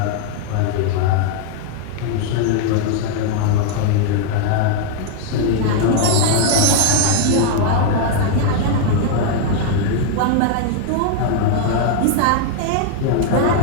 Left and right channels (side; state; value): both; different; correlation 0.00